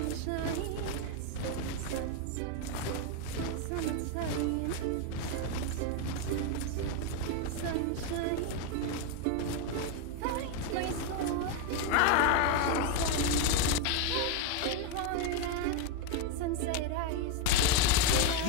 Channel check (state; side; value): different; both; correlation 0.01